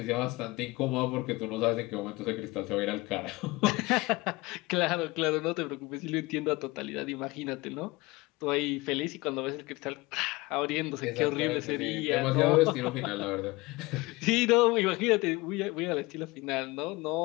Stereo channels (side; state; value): right; quieter; 22.3 dB